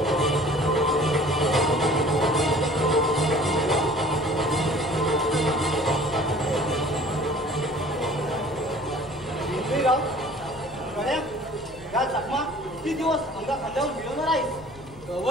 किती दिवस अंगा खांद्यावर मिळवणार आहेस.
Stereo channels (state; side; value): noise; left; rumble, 21 dB below the sound